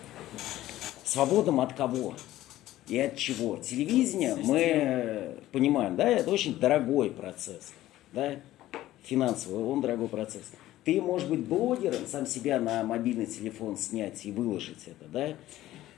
Свободным от кого? И от чего? Телевидение, мы понимаем, да, это очень дорогой процесс, да, финансовый, он дорогой процесс. Ты, может быть, блогером, сам себя на мобильный телефон снять и выложить это, да,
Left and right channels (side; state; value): right; quieter; 14.8 dB